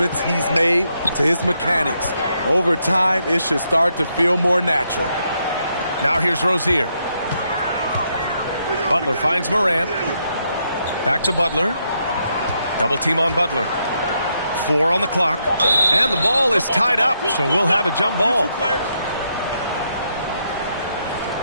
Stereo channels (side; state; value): both; inverted; correlation -0.78